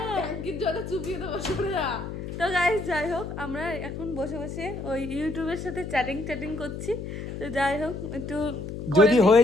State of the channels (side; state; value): left; noise; hum, 7 dB below the sound